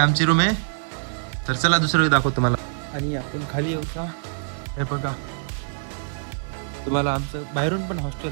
रूम आहे. तर चला दुसरं दाखवतो तुम्हाला. आणि आपण खाली येऊ का? हे बघा, तुम्हाला आमचं बाहेरून पण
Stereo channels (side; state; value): left; silent; 60 dB below the other